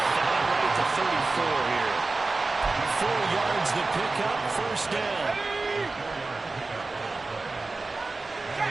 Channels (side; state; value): left; quieter; 3.5 dB